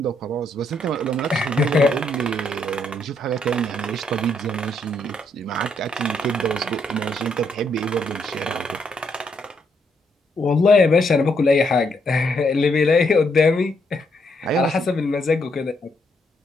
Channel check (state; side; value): normal; both; correlation 0.75